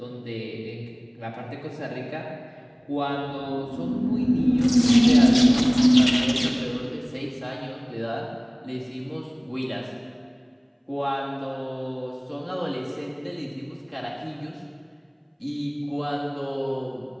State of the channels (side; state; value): both; identical; correlation 1.00